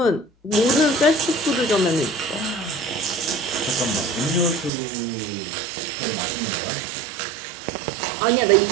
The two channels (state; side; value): drops out; left; at 4.7 s